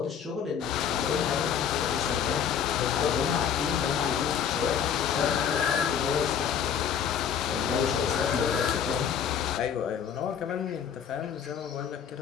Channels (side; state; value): right; quieter; 8.1 dB